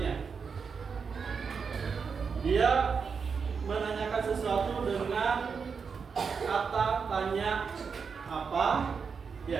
Dia menanyakan sesuatu dengan kata tanya apa,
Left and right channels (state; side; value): quieter; left; 5.8 dB